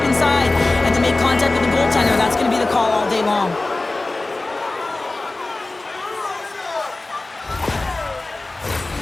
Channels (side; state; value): right; quieter; 3.1 dB